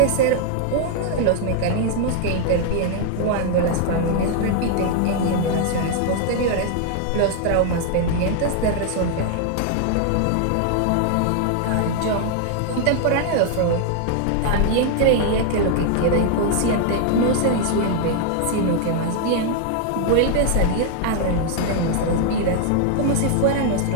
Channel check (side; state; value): both; different; correlation 0.00